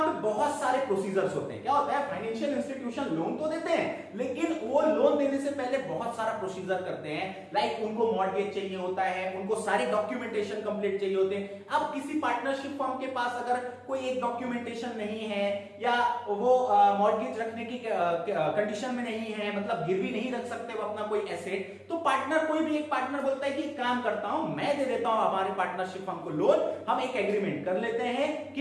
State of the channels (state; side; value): identical; both; correlation 1.00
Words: पे बहुत सारे प्रोसीजर्स होते हैं। क्या होता है, फाइनेंशियल इंस्टीट्यूशन लोन तो देते हैं लेकिन वो लोन देने से पहले बहुत सारा प्रोसीजर करते हैं। लाइक उनको मॉर्गेज चाहिए होता है, उनको सारे डॉक्यूमेंटेशन कंप्लीट चाहिए होते हैं। अब किसी पार्टनरशिप फर्म के पास अगर कोई एक डॉक्यूमेंटेशन नहीं है या वो मॉर्गेज रखने की कंडीशन में नहीं है, मतलब गिरवी नहीं रख सकते वो अपना कोई एसेट, तो पार्टनर, कोई भी एक पार्टनर बोलता है कि काम करता हूं, मैं दे देता हूं हमारे पार्टनरशिप फर्म को लोन। हम एक एग्रीमेंट कर लेते हैं